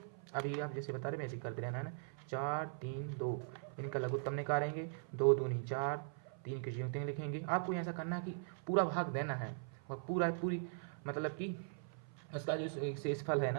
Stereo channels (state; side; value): silent; left; 51 dB below the other